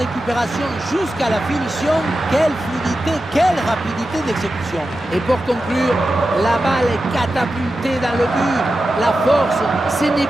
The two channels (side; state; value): both; normal; correlation 0.92